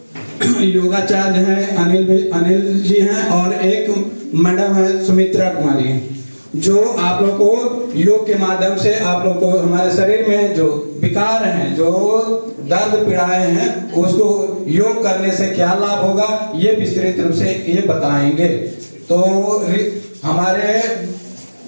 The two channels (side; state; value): both; inverted; correlation -1.00